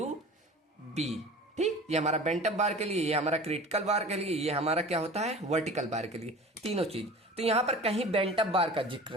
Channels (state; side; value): normal; both; correlation 0.39